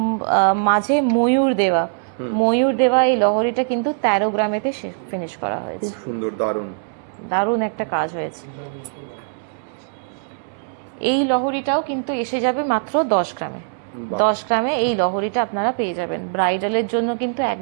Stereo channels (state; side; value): silent; left; 65 dB below the other